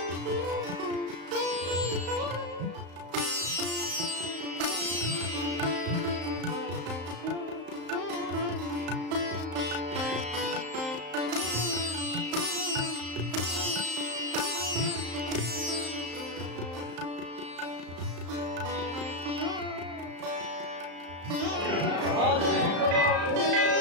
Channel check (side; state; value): left; late; 34 ms